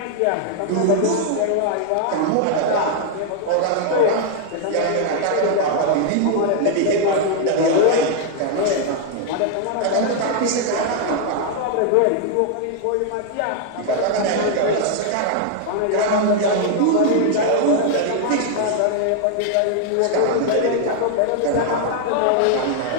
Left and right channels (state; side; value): different; both; correlation 0.00